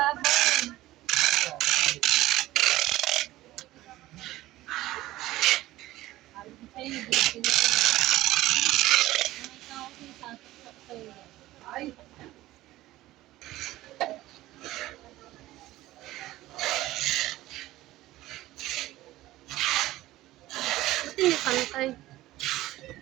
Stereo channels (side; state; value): left; quieter; 16.5 dB